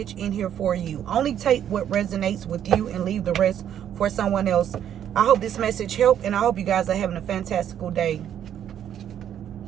in here for you. Only take what resonates with you and leave the rest for someone else. I hope this message helped, and I hope you guys are having a fantastical day.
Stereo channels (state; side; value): quieter; left; 10.0 dB